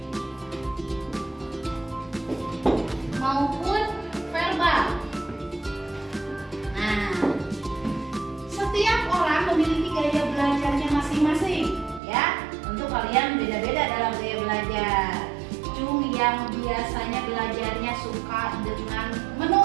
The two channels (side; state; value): left; drops out; at 12.0 s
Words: maupun verbal. Nah, setiap orang memiliki gaya belajarnya masing-masing, ya. Untuk kalian beda-beda dalam gaya belajar. Cung yang biasanya belajarnya suka dengan